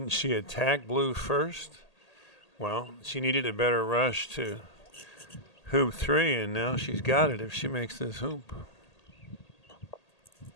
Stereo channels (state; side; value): late; right; 1.8 ms